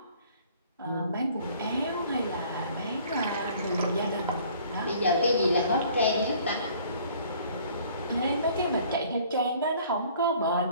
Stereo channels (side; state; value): both; inverted; correlation -0.55